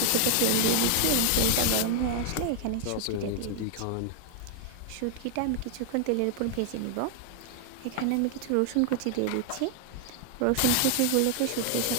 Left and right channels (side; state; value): both; different; correlation 0.00